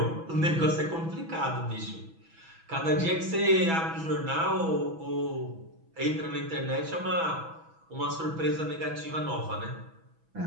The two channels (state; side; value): late; left; 6.1 ms